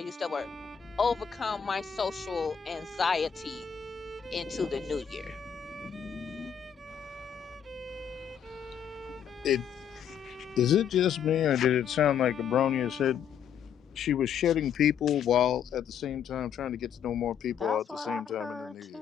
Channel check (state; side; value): quieter; right; 8.2 dB